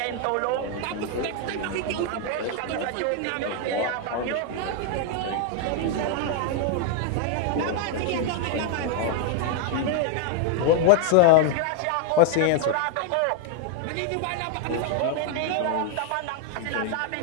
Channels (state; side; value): different; both; correlation 0.00